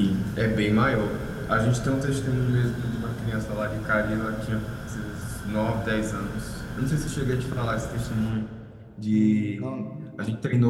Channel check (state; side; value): identical; both; correlation 1.00